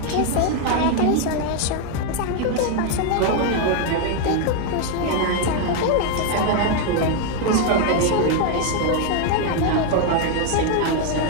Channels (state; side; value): different; both; correlation 0.00